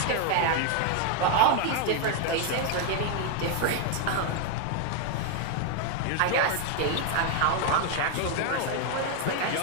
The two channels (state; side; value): different; both; correlation 0.00